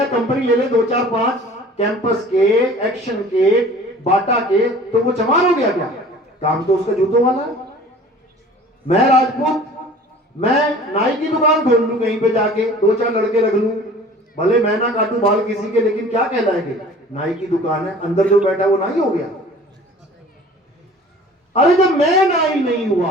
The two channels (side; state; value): both; normal; correlation 0.46